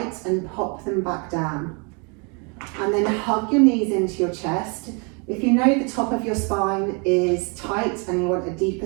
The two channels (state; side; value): quieter; left; 34.2 dB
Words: and pop them back down. And then hug your knees into your chest. If you know the top of your spine is tight and you want a